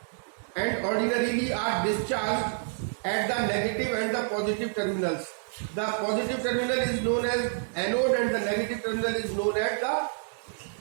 and ordinarily are discharged at the negative and the positive terminals. The positive terminal is known as anode and the negative terminal is known as the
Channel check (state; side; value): silent; left; digital silence